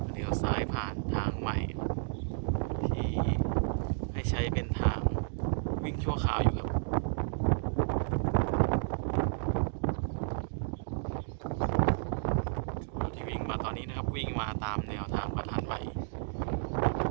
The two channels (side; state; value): left; silent; digital silence